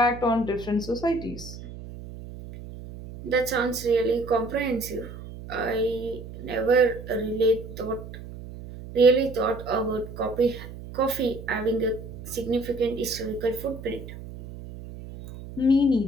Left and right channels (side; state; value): right; noise; hum, 13 dB below the sound